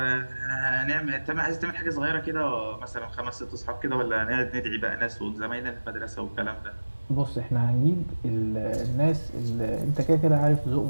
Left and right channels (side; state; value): both; inverted; correlation -1.00